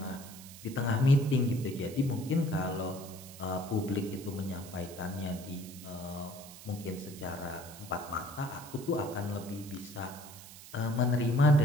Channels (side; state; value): right; noise; hiss, 16 dB below the sound